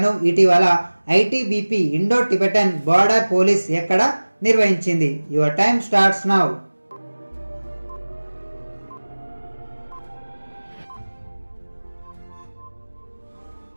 ఇటీవల ITBP Indo Tibetan border police ఎక్కడ నిర్వహించింది? Your time starts now.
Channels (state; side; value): inverted; both; correlation -1.00